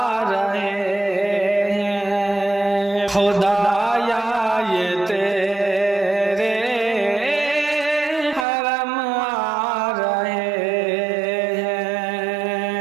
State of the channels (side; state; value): left; drops out; at 8.5 s